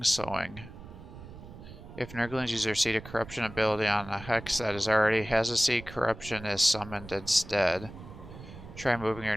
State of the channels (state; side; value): noise; right; rumble, 15 dB below the sound